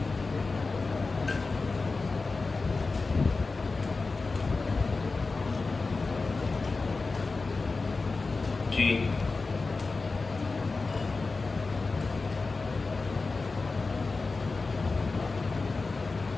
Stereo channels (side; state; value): right; quieter; 3.9 dB